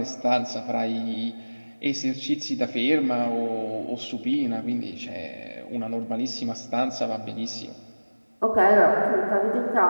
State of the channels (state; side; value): inverted; both; correlation -1.00